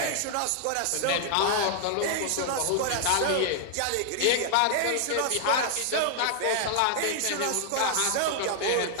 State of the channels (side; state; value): both; different; correlation 0.00